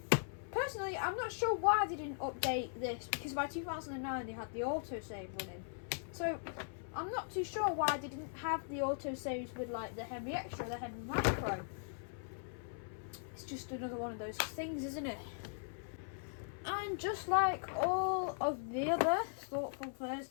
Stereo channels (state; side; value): silent; right; 51 dB below the other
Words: personally, I'm not sure why they didn't update this because by 2009 they had the autosave running. So, I'm not too sure why they didn't have the autosaves with like the Henry Extra, the Henry Micro. It's just another one of those things, isn't it? And just like all of the other Thoughtful